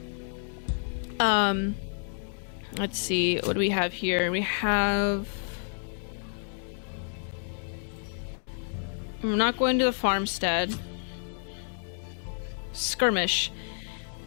Let's see, what do we have here? We have... I'm not going to the farmstead. Skirmish.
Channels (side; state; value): right; silent; digital silence